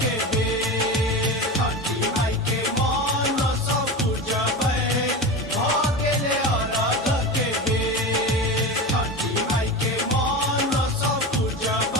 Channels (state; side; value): normal; both; correlation 0.25